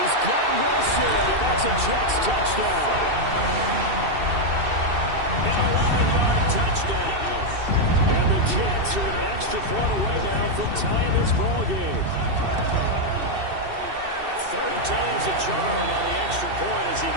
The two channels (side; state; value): left; late; 2.7 ms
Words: got Wilson, and that's a Jets touchdown. An 11-yard touchdown. And the Jets are an extra point away now from tying this ball game. 3rd time's a charm on the extra point as he